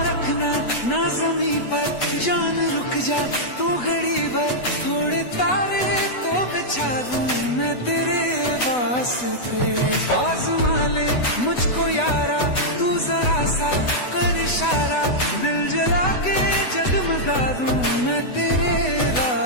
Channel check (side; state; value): right; late; 8.0 ms